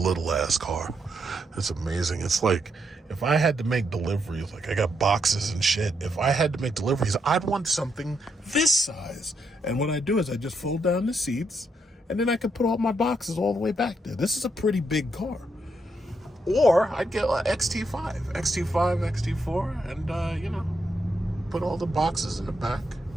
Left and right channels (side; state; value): both; normal; correlation 0.79